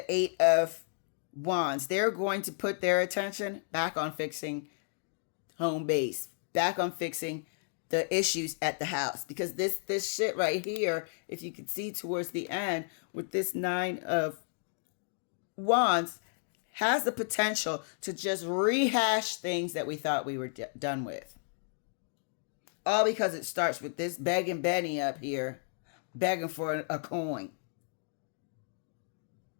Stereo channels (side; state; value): right; silent; digital silence